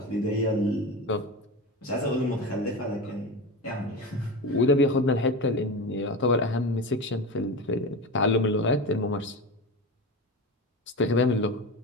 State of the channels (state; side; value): normal; both; correlation 0.25